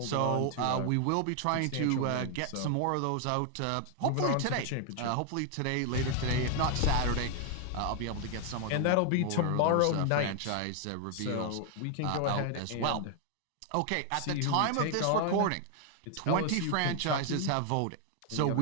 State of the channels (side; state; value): both; different; correlation 0.00